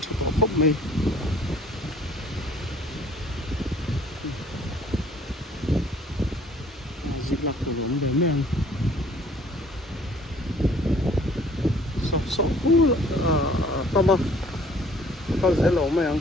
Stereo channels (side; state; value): both; normal; correlation 0.56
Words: thu ko khop mai dịch lạc của giống để men so cool tama tao sẽ lỗ mày ăn